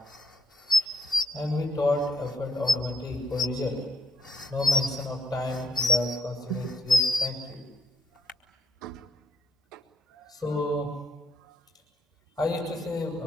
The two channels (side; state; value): both; normal; correlation 0.75